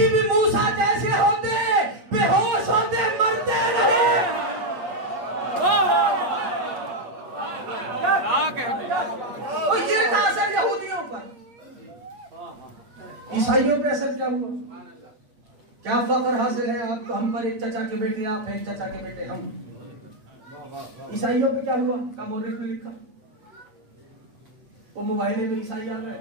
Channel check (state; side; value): late; left; 8.9 ms